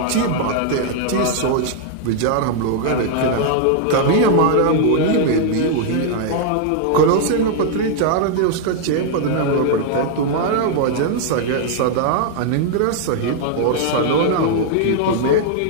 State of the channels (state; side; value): different; both; correlation -0.01